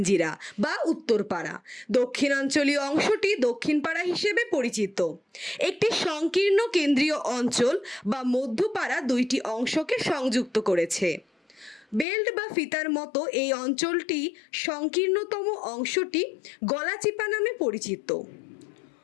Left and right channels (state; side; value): drops out; right; at 12.1 s